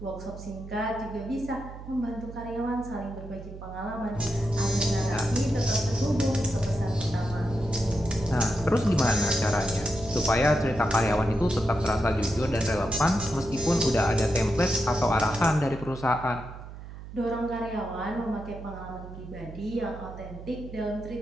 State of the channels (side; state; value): right; noise; hum, 13 dB below the sound